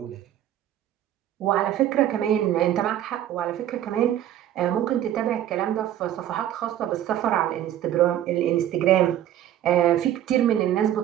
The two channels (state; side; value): quieter; left; 11.8 dB